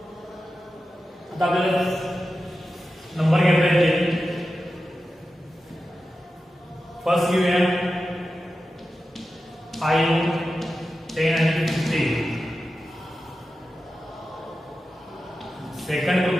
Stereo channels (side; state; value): both; normal; correlation 0.92